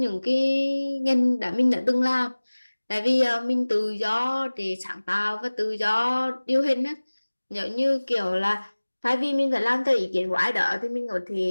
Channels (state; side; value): inverted; both; correlation -1.00